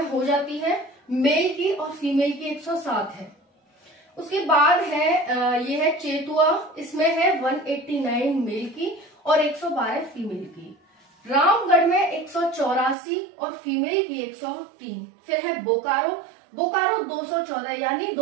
हो जाती है। मेल की और फीमेल की 107 है। उसके बाद है ये है चेतुआ, इसमें है 189 मेल की और 112 फीमेल की। रामगढ़ में 184 और फीमेल की 103। फिर है बोकारो, बोकारो 214, यानी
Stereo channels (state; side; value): drops out; left; at 13.0 s